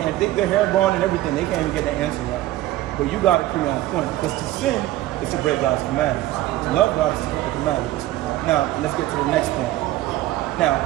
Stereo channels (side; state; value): left; quieter; 15.6 dB